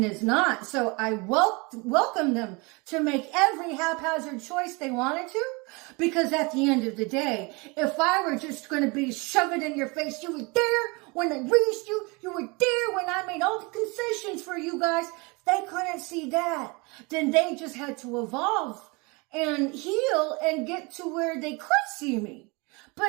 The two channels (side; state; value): left; quieter; 27.8 dB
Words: is not. So I welcome them to make every haphazard choice they wanted to. Because at the end of the day, if I were just going to be shoved in your face, you were there when I raised you. You were there when I made all the concessions for you guys. If they couldn't see that, then they just had to evolve and heal and get to where they could see me.